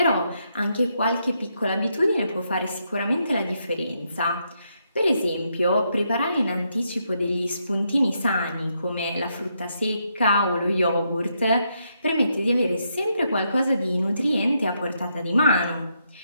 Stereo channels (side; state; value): both; inverted; correlation -0.79